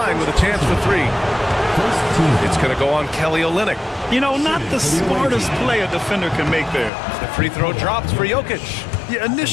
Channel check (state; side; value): drops out; right; at 6.9 s